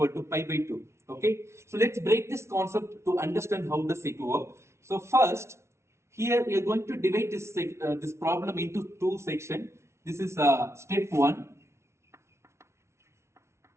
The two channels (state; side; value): late; left; 0.13 ms